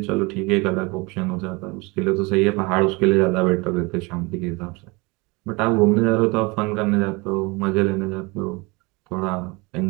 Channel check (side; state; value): left; quieter; 26.4 dB